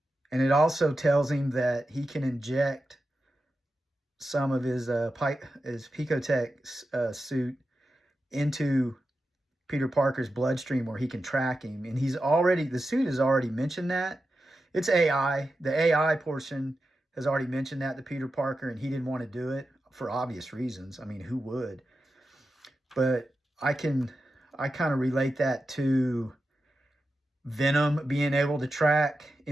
And it also tells him that he can inject some of his Picotech suit into Peter Parker's bloodstream where he can track him. And the suit has already mentioned that. It's AI. The AI portion has already mentioned that to Peter Parker, and he didn't want to do it for obvious reasons. I mean, who would? But I kind of relate that to Venom being able to track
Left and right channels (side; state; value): both; normal; correlation 0.91